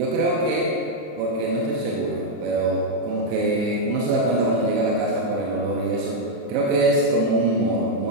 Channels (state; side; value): late; left; 26 ms